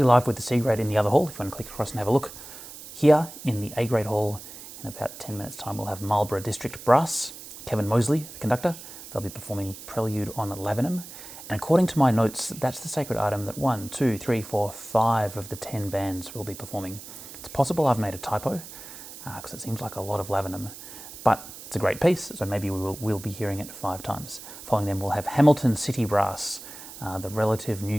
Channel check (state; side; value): noise; right; hiss, 14 dB below the sound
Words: live with the C-grade in the other hall. If you want to click across and have a look. Here in the A-grade hall, in about 10 minutes time, we'll have Marlborough District Brass, Kevin Mosley, the conductor. They'll be performing Prelude on Lavenham. And according to my notes, that's the sacred item that 1, 2, 3, 4, 5 of the 10 bands will be performing. It's possible I've made a typo, because it seems like a lot of Lavenham, but it's a great piece, so maybe we'll be hearing it 5 times. Following them, we'll have Hamilton City Brass, the relative